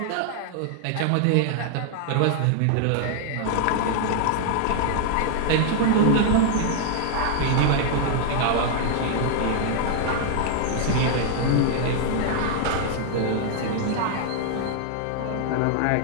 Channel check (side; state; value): both; different; correlation 0.00